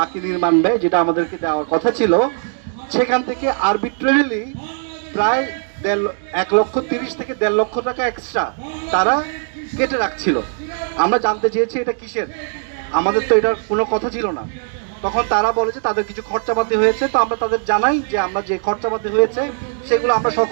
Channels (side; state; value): left; silent; 67 dB below the other